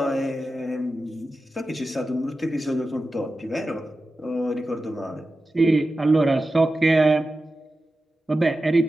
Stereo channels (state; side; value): normal; both; correlation 0.93